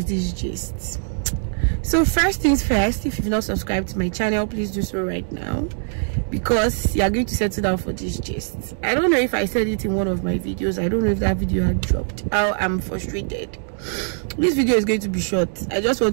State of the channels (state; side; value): silent; left; digital silence